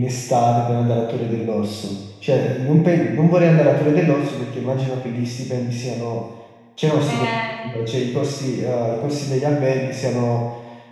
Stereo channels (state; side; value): identical; both; correlation 1.00